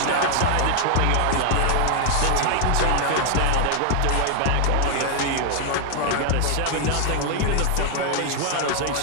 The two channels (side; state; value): both; different; correlation 0.00